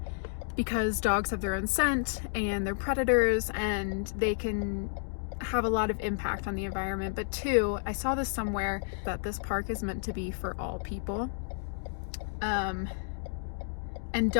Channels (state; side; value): silent; right; digital silence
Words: because dogs have their own scent and they're predators and they can have a lot of impact on the environment. But two, I saw this somewhere that this park is meant to be for all people. And